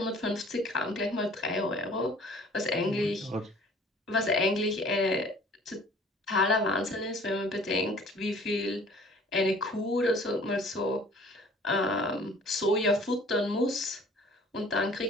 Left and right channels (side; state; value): both; normal; correlation 0.51